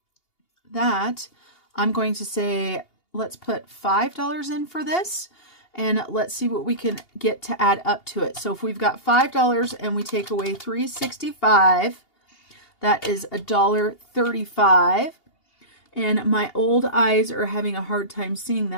that I'm going to say, let's put $5 in for this. And let's see what we can get to add up to it. So if we've got $5 and we take away $3.65, that is $1.35. And my old eyes are having a hard time seeing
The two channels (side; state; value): right; late; 2.8 ms